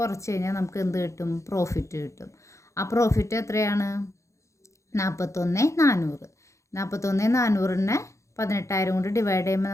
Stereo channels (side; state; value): right; late; 0.15 ms